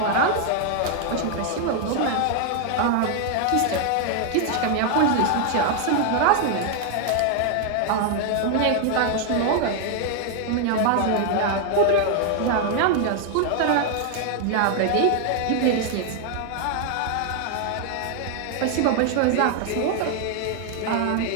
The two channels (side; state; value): both; different; correlation 0.00